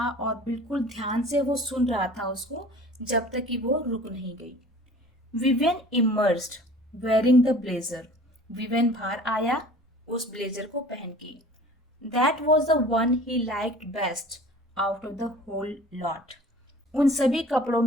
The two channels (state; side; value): normal; both; correlation 0.45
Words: और बिल्कुल ध्यान से वो सुन रहा था उसको, जब तक कि वो रुक नहीं गई। Vivian emerged wearing the blazer. Vivian बाहर आया उस ब्लेजर को पहन के। That was the one he liked best out of the whole lot. उन सभी कपड़ों